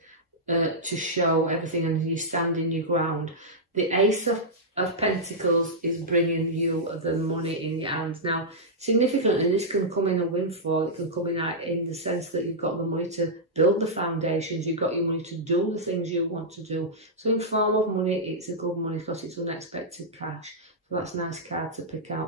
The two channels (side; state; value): both; normal; correlation -0.10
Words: to show everything, and you stand in your ground. The Ace of Pentacles is bringing you the money in your hands. Now, significantly, this can come in a windfall. It can come in the sense that you've got the money to build the foundations. You've got your money to do the things you want to do. So in form of money, it's a good money because it's unexpected cash. So that's a nice card to pick